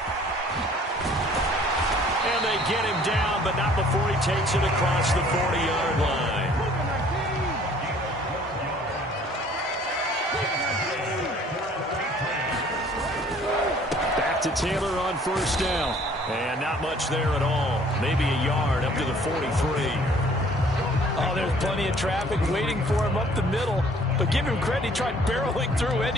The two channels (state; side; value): normal; both; correlation 0.56